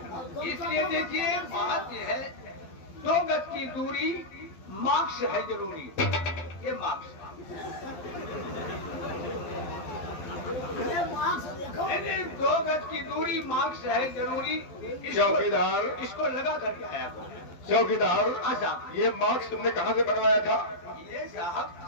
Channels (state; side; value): late; right; 12 ms